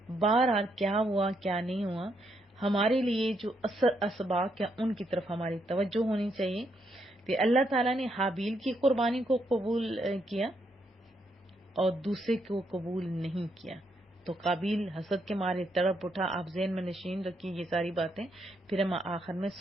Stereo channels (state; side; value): normal; both; correlation 0.77